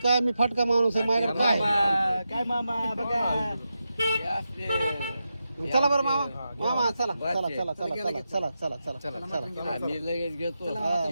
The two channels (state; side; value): inverted; both; correlation -0.88